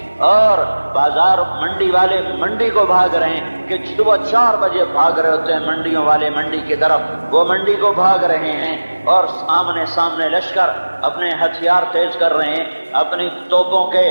اور بازار منڈی والے منڈی کو بھاگ رہے ہیں کہ صبح 4 بجے بھاگ رہے ہوتے ہیں منڈیوں والے منڈی کی طرف، وہ منڈی کو بھاگ رہے ہیں، اور سامنے لشکر اپنے ہتھیار تیز کر رہے ہیں، اپنی توپوں کے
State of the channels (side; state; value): both; inverted; correlation -1.00